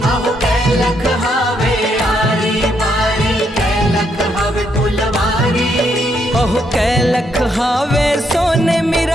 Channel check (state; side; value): normal; both; correlation 0.76